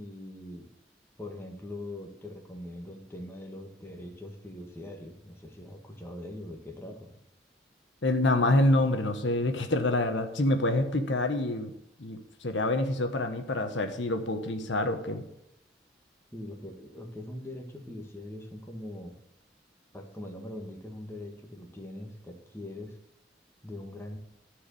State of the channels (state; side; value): normal; both; correlation 0.43